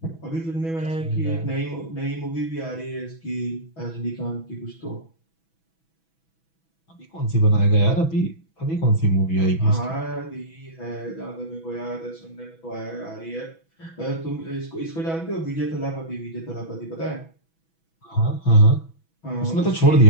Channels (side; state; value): right; late; 6.1 ms